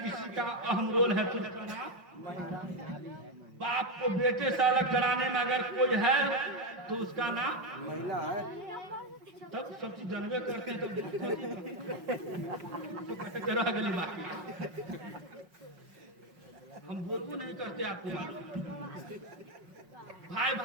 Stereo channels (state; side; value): late; left; 5.5 ms